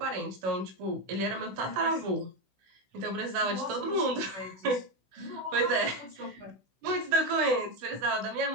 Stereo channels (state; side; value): late; left; 16 ms